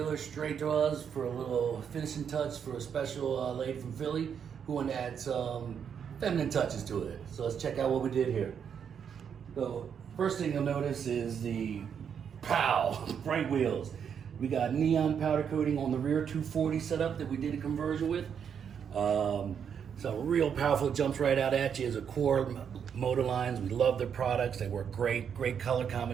straight to us for a little finishing touch for a special lady from Philly who wanted to add some feminine touches to it. So let's check out what we did here. So first thing you'll notice is the bright wheels. We got neon powder coating on the rear 240 setup that we did a conversion with. So real powerful, jumps right out at you as a core Moto Lines. We love their products. They work great color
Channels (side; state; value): left; quieter; 7.6 dB